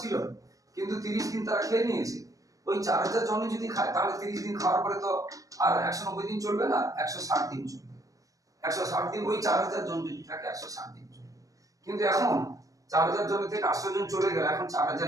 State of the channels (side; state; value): left; late; 0.16 ms